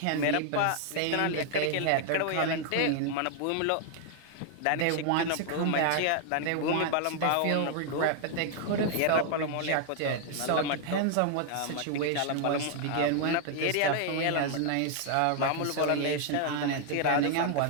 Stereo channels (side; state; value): both; different; correlation 0.00